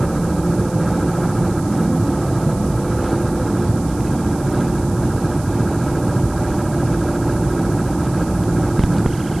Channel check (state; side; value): noise; right; hiss, 19 dB below the sound